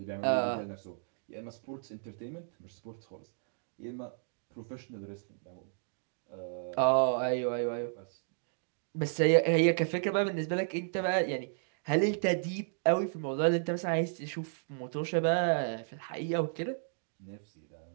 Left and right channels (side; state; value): left; silent; digital silence